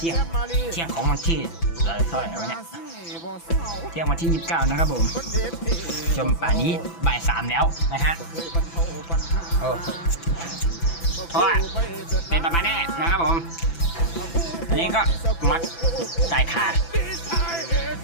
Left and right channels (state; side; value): late; right; 6.0 ms